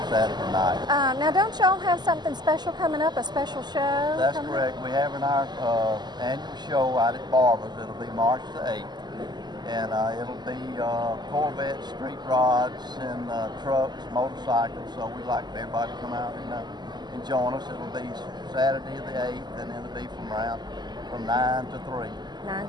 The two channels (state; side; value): late; left; 0.21 ms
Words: Saturday night. Now, don't y'all have something special coming up? A special show? That's correct. We have in our annual show out at Barber's. It'll be March the 8th. And it'll be Corvettes, street rods, and trucks, motorcycles. So we'd like for everybody to come out and join us. It'll be Saturday the 8th, and it'll be from 9 to 3. 9